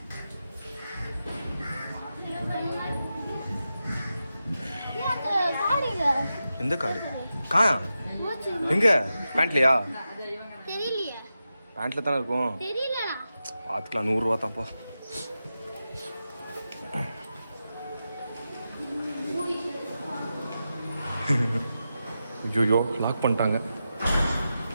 எந்த கார்டு? காயா எங்க? பேண்ட்லையா? பேண்ட்ல தானே இருக்கும். பார்த்துக்கலாம். 100 ரூபா தான்ப்பா. ஐயோ லாக் பண்ணிட்டாங்க.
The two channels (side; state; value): both; inverted; correlation -0.90